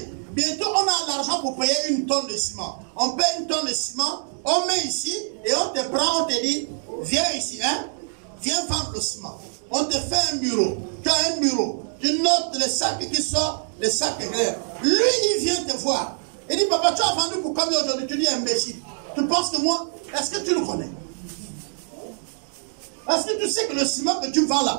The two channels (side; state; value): left; silent; digital silence